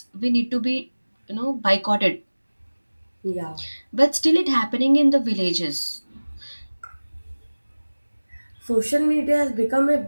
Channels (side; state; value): both; inverted; correlation -1.00